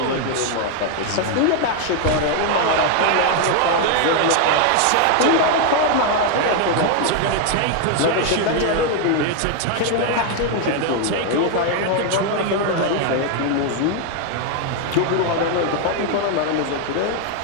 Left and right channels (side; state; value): both; different; correlation 0.01